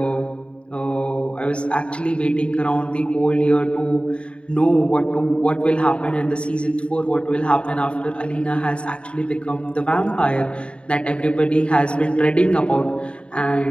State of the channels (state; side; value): late; right; 0.057 ms